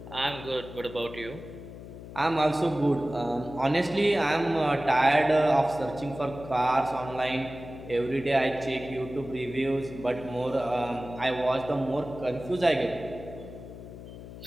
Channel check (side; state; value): left; noise; hum, 13 dB below the sound